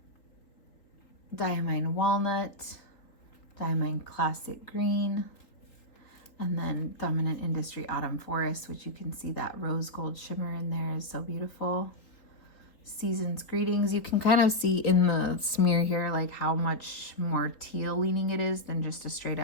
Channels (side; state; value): right; late; 3.7 ms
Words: Diamine Walnut, Diamine Classic Green, and then Dominant Industry Autumn Forest, which you can see that rose gold shimmer in there is so beautiful. Season's Greetings, you can kind of see in the smear here like how much more teal leaning it is than just a straight